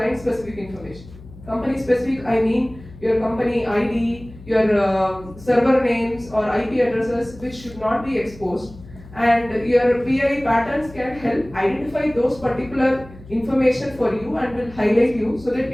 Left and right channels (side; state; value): left; noise; hum, 19 dB below the sound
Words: specific information. Company specific, I mean your company ID, your server names or IP addresses, which should not be exposed. And your PII patterns can help identify those particular information for you and will highlight you so that you